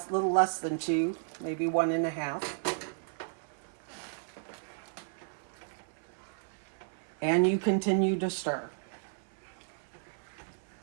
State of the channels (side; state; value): left; silent; 55 dB below the other